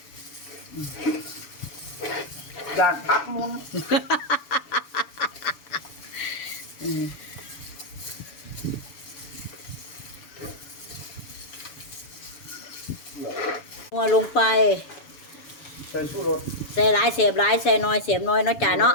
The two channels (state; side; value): late; right; 7.0 ms